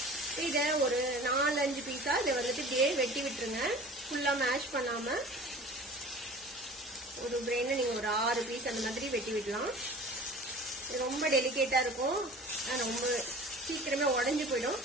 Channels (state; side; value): normal; both; correlation 0.42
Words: இதை ஒரு 4-5 பீஸா இதை வந்துட்டு இப்படியே வெட்டி விட்டுருங்க. ஃபுல்லா மேஷ் பண்ணாம ஒரு பிரெயினை நீங்க ஒரு 6 பீஸ் அந்த மாதிரி வெட்டி விடலாம். இது ரொம்ப டெலிகேட்டா இருக்கும், ரொம்ப சீக்கிரமே உடஞ்சு போயிடும்.